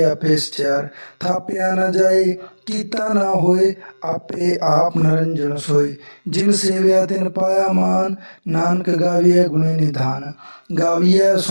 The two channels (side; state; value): both; inverted; correlation -1.00